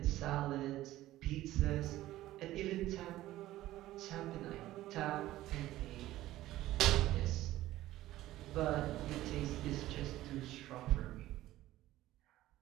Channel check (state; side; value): quieter; left; 15.4 dB